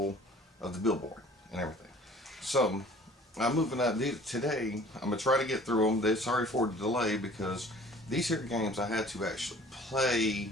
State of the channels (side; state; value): both; normal; correlation 0.50